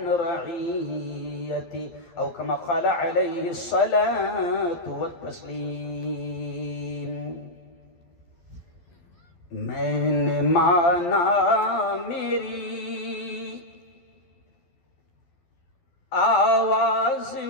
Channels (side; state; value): right; late; 12 ms